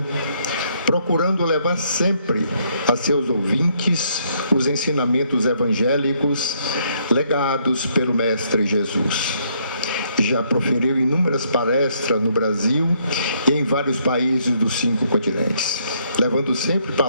procurando levar sempre a seus ouvintes os ensinamentos evangélicos legados pelo Mestre Jesus. Já proferiu inúmeras palestras no Brasil e em vários países dos 5 continentes, levando sempre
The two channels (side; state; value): both; inverted; correlation -0.70